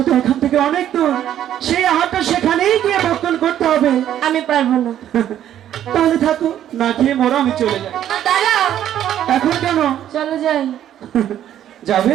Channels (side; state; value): left; quieter; 11.1 dB